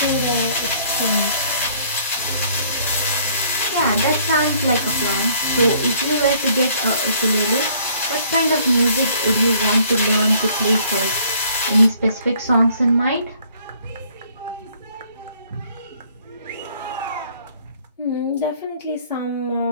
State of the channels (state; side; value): inverted; both; correlation -0.60